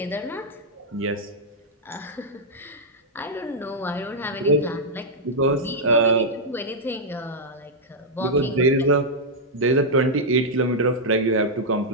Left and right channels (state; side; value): normal; both; correlation -0.05